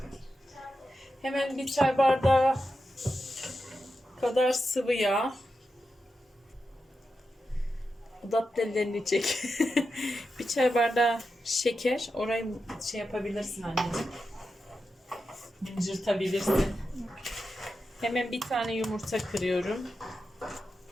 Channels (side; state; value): both; normal; correlation 0.89